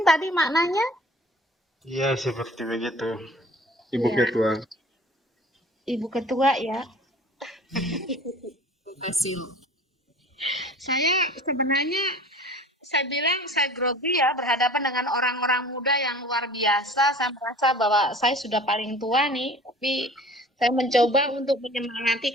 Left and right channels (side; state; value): both; normal; correlation 0.45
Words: tadi maknanya? Iya, seperti begitu, Ibu Ya. Ketua. Ibu Ketua ya. Saya bilang saya grogi ya berhadapan dengan orang-orang muda yang luar biasa. Saya merasa bahwa saya sudah paling tua nih, tapi saya mencoba untuk